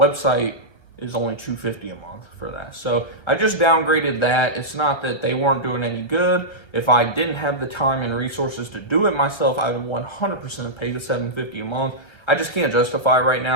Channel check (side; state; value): right; late; 1.2 ms